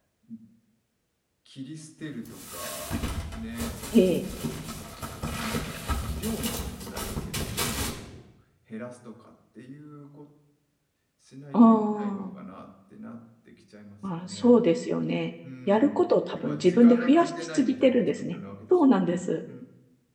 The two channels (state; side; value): identical; both; correlation 1.00